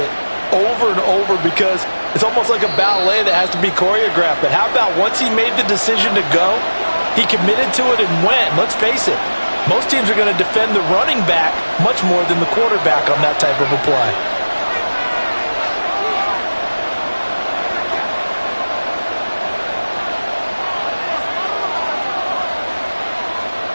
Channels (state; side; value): inverted; both; correlation -1.00